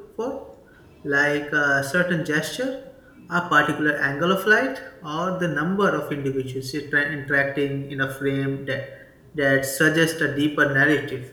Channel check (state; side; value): identical; both; correlation 1.00